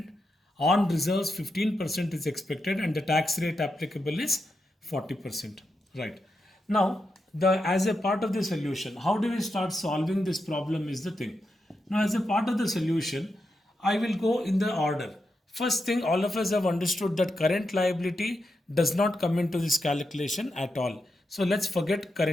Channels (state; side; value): normal; both; correlation 0.86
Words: on reserves 15% is expected, and the tax rate applicable is 40%. Right. Now, as a part of the solution, how do we start solving this problem is the thing. Now, as a part of the solution, I will go in the order. First thing, all of us have understood that current liability does not come into this calculation at all. So let's forget